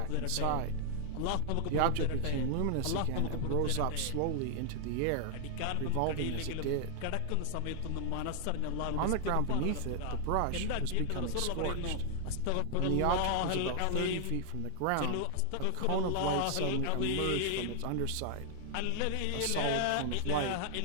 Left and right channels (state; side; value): different; both; correlation 0.00